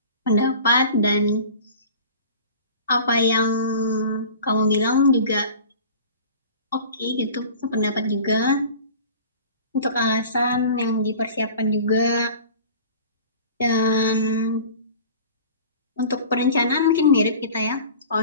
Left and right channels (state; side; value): inverted; both; correlation -0.42